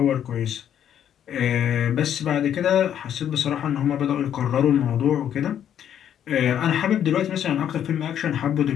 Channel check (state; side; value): quieter; right; 9.8 dB